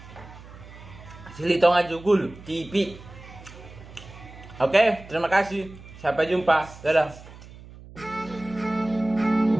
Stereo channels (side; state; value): right; noise; hum, 18 dB below the sound